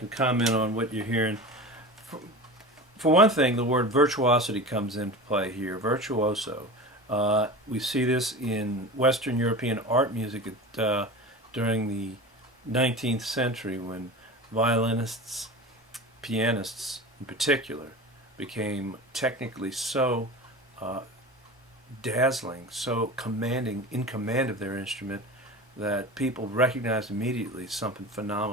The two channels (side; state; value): both; normal; correlation 0.32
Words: comment on what you're hearing. For one thing, the word virtuosity comes into play here. Virtuoso. We see this in Western European art music during the 19th century, when violinists, pianists in particular, became technically so dazzling, so commanding, in command of their instrument, that people recognized immediately something